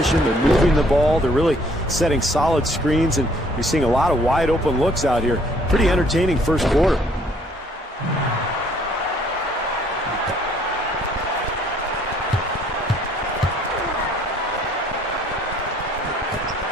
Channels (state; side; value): normal; both; correlation 0.61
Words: They're moving the ball. They're really setting solid screens, and you're seeing a lot of wide open looks out here. Pretty entertaining first quarter.